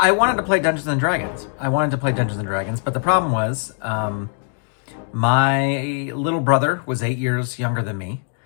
wanted to play Dungeons and Dragons. But the problem was my little brother was 8 years younger than me,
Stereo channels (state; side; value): silent; right; 56 dB below the other